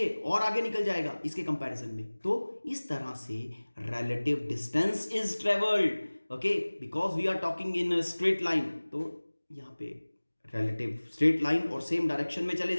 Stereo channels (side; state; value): both; inverted; correlation -1.00